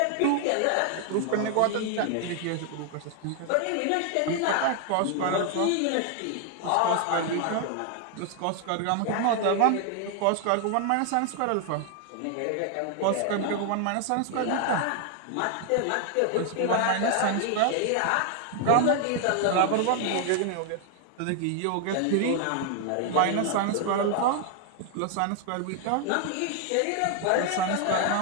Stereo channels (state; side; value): different; both; correlation 0.00